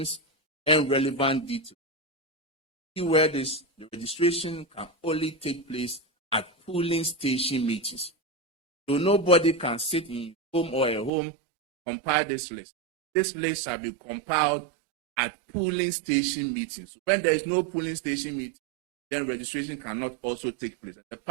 and relevant details. Where the registration can only take place at polling station meetings. So nobody can sit in home or at home compile this list. This list shall be compiled at polling station meetings. So when there is no polling station meeting, then registration cannot also take place. The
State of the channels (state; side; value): drops out; left; at 11.1 s